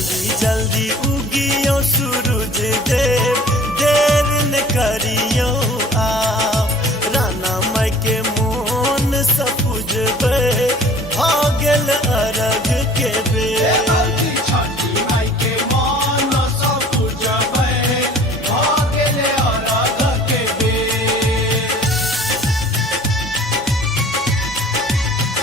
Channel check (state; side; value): normal; both; correlation 0.48